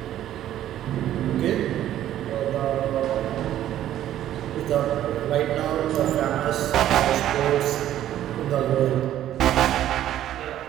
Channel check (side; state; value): left; quieter; 12.1 dB